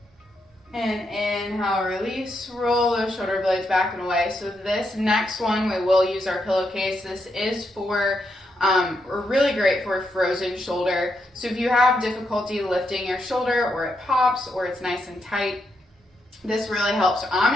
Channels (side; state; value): both; normal; correlation 0.81